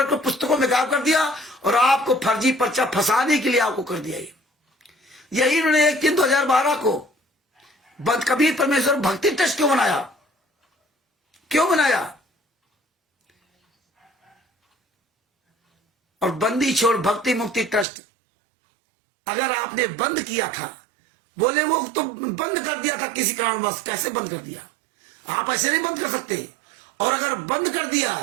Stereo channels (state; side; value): drops out; left; at 17.9 s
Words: को पुस्तकों में गायब कर दिया और आपको फर्जी पर्चा फंसाने के लिए आपको कर दिया। यही इन्होंने 1/3/2012 को कबीर परमेश्वर भक्ति ट्रस्ट क्यों बनाया? क्यों बनाया? और बंदी छोड़ भक्ति मुक्ति ट्रस्ट अगर आपने बंद किया था, बोले वो तो बंद कर दिया था किसी कारणवश, कैसे बंद कर दिया? आप ऐसे नहीं बंद कर सकते। और अगर बंद कर दिया